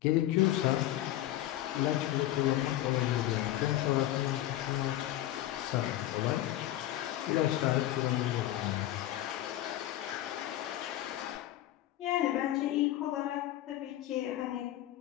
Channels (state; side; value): quieter; right; 14.0 dB